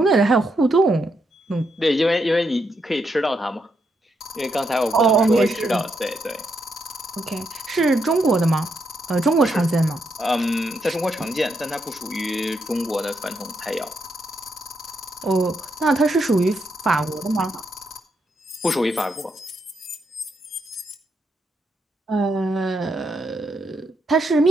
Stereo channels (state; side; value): normal; both; correlation 0.80